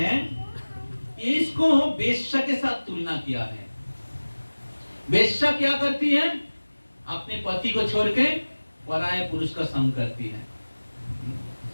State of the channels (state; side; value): inverted; both; correlation -1.00